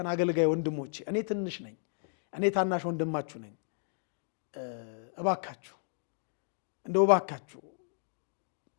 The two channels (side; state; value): right; silent; digital silence